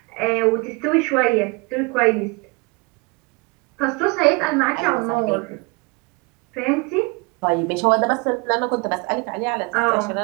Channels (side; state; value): left; quieter; 28.3 dB